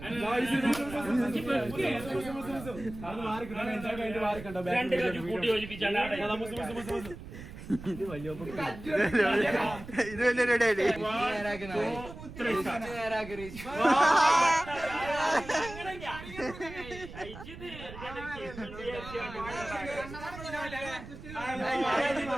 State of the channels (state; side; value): noise; right; rumble, 13 dB below the sound